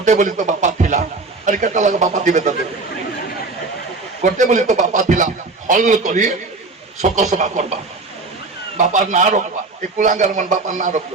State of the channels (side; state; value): left; quieter; 3.6 dB